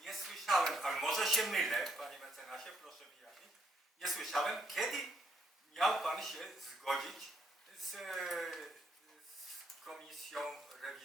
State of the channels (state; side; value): normal; both; correlation 0.73